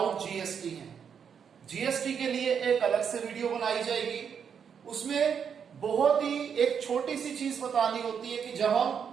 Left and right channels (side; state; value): left; quieter; 7.3 dB